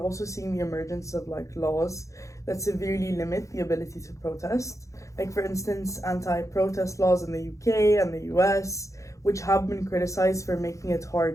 also seeing the emergence of like laws that severely limit the ability to protest. Like for instance, anti-protest laws in the UK and the US, which have been criticized for making it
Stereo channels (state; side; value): late; right; 0.15 ms